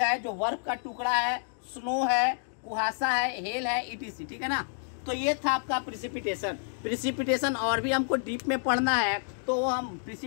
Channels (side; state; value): right; silent; digital silence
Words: जो बर्फ का टुकड़ा है, स्नो है, कुहासा है, हेल है, इटीसी, ठीक है ना। तो ये था आपका प्रिसिपिटेशन। प्रिसिपिटेशन और भी हमको डीप में पढ़ना है तो हम